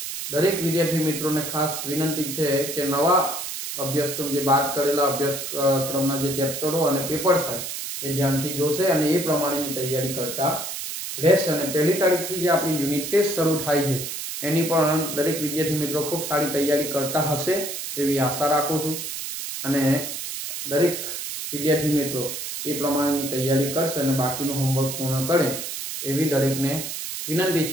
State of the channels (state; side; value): noise; right; hiss, 6 dB below the sound